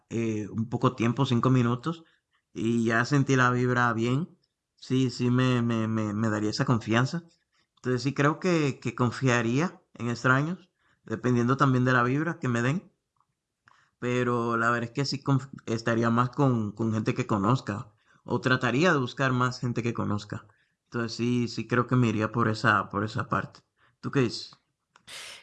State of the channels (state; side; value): identical; both; correlation 1.00